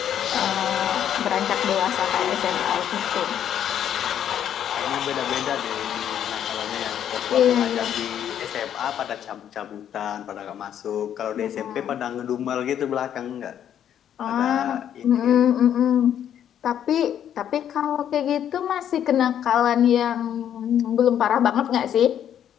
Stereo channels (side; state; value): right; quieter; 9.8 dB